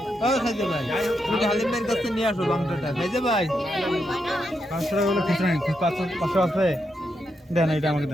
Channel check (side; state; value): both; normal; correlation 0.83